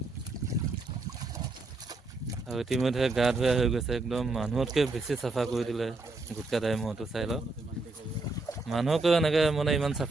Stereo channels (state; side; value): quieter; left; 3.2 dB